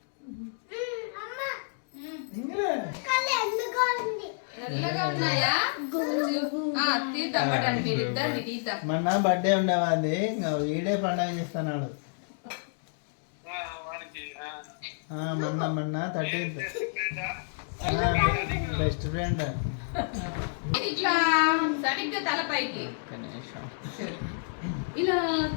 తెల్లగా ఉన్నాయా తీద్దాం పడండి మీరు ఇద్దరిని తీద్దాం. మొన్న బర్త్డే ఉండేవాది ఇంకా వీడే పండగ చేస్తున్నాడు. మొన్న 13th బెస్ట్ ఫ్రెండ్. ఇట్లా సరిగ్గా తలపైకి ఇలా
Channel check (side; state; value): right; silent; digital silence